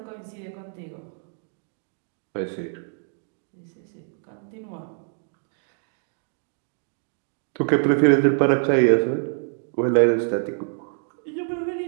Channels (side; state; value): left; silent; digital silence